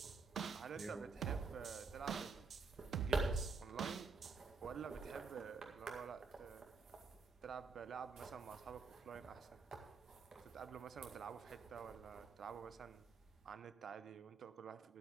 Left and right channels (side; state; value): left; quieter; 4.6 dB